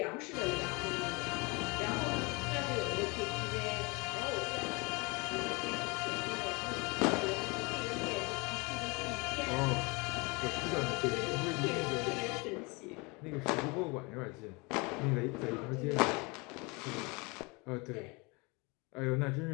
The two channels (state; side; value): quieter; right; 27.7 dB